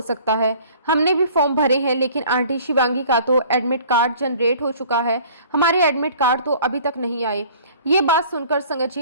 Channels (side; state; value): both; inverted; correlation -0.50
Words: सकता है, हमने भी फॉर्म भरे हैं लेकिन आंटी शिवांगी का तो एडमिट कार्ड जनरेट हो चुका है, हमारे एडमिट कार्ड तो अभी तक नहीं आए। ये बात सुनकर संगत